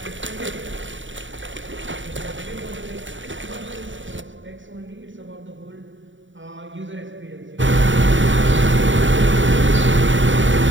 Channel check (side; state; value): left; late; 0.55 ms